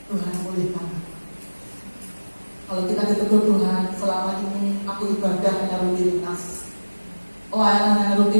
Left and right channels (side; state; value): both; inverted; correlation -1.00